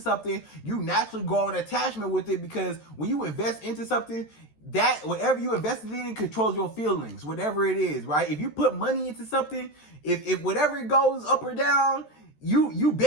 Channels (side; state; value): right; late; 13 ms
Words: you naturally grow an attachment with it, because when you invest into something, that whatever you invested in controls your feelings, whatever it is, right? If you put money into something, if whatever it goes up or down, you